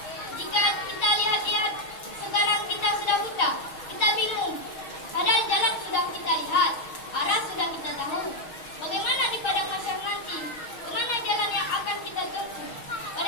Jika kita lihat-lihat sekarang kita sudah buta, kita bingung. Padahal jalan sudah kita lihat, arah sudah kita tahu. Bagaimana di padang mahsyar nanti? Kemana jalan yang akan kita tempuh?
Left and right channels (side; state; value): right; late; 6.3 ms